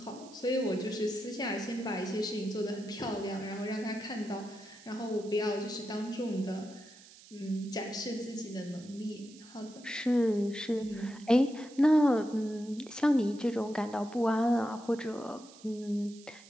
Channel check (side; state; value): right; noise; hiss, 21 dB below the sound